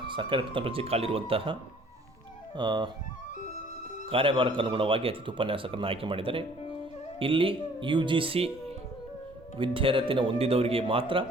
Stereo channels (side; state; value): both; normal; correlation 0.56